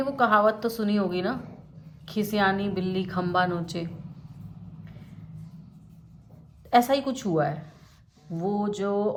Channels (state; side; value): identical; both; correlation 1.00